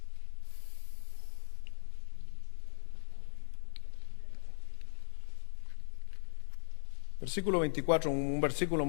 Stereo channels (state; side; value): silent; right; digital silence